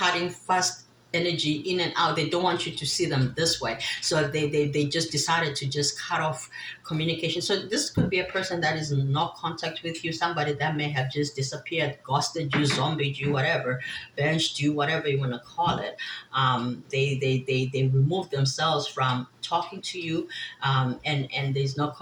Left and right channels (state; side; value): identical; both; correlation 1.00